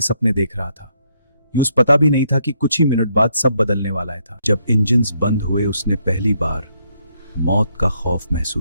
सपने देख रहा था। यूस पता भी नहीं था कि कुछ ही मिनट बाद सब बदलने वाला था। जब इंजन्स बंद हुए उसने पहली बार मौत का खौफ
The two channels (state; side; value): inverted; both; correlation -0.74